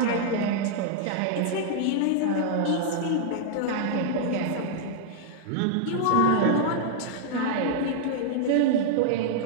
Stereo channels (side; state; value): both; different; correlation -0.01